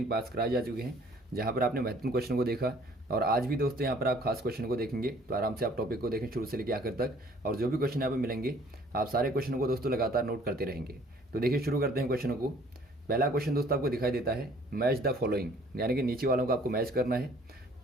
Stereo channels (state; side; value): normal; both; correlation 0.56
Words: पार्ट्स कराए जा चुके हैं, जहाँ पर आपने महत्वपूर्ण क्वेश्चन को देखा। और आज भी दोस्तों यहाँ पर आप खास क्वेश्चन को देखेंगे, तो आराम से आप टॉपिक को देखें शुरू से लेकर आखिर तक। और जो भी क्वेश्चन यहाँ पर मिलेंगे आप सारे क्वेश्चनों को दोस्तों लगातार नोट करते रहेंगे। तो देखिए शुरू करते हैं क्वेश्चनों को। पहला क्वेश्चन दोस्तों आपको दिखाई देता है मैच द फॉलोइंग, यानी कि नीचे वालों को आपको मैच करना है।